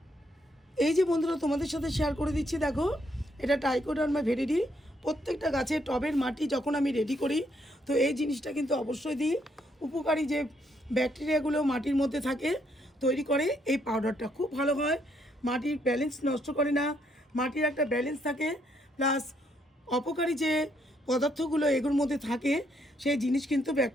এই যে বন্ধুরা তোমাদের সাথে শেয়ার করে দিচ্ছি, দেখো এটা ট্রাইকোডার্মা ভিরিডি। প্রত্যেকটা গাছের টবের মাটি যখন আমি রেডি করি তো এই জিনিসটা কিন্তু অবশ্যই দিই। উপকারী যে ব্যাকটেরিয়াগুলো মাটির মধ্যে থাকে তৈরি করে এই পাউডারটা, খুব ভালো হয়। মাটির ব্যালেন্স নষ্ট করে না, মাটির একটা ব্যালেন্স থাকে, প্লাস অপকারী যে পদার্থগুলো এগুলোর মধ্যে থাকে সেই জিনিস কিন্তু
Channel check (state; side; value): normal; both; correlation 0.73